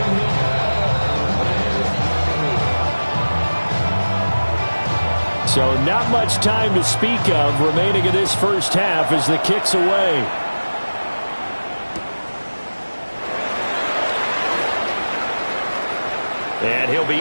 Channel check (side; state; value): both; inverted; correlation -1.00